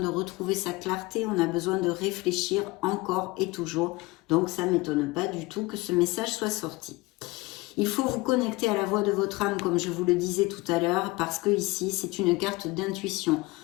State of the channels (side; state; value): right; quieter; 22.4 dB